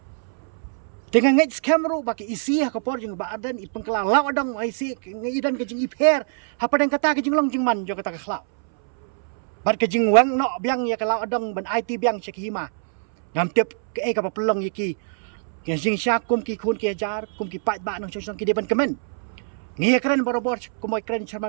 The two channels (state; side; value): silent; left; 63 dB below the other